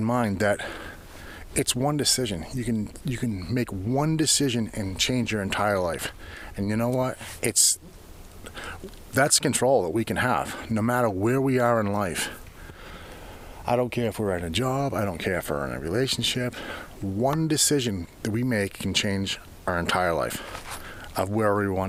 mind, that it's one decision. You can make one decision and change your entire life. And you know what? That's control that we can have, no matter where we are in life. I don't care if we're in a job, I don't care if we're in a relationship. One decision that we make can change our entire life of where we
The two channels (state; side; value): identical; both; correlation 1.00